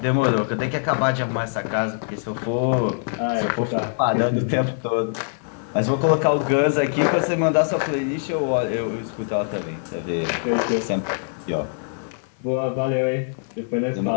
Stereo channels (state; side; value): silent; right; 57 dB below the other